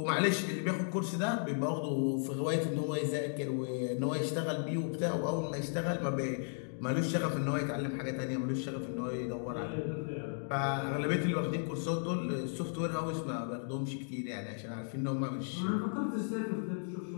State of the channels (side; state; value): right; silent; digital silence